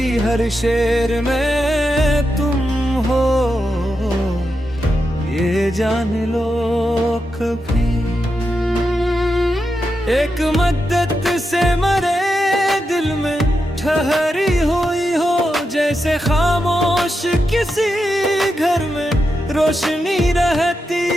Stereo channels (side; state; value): both; normal; correlation 0.87